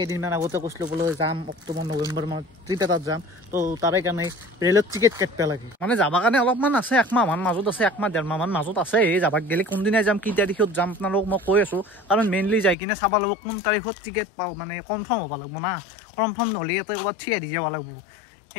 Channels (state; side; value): drops out; right; at 12.8 s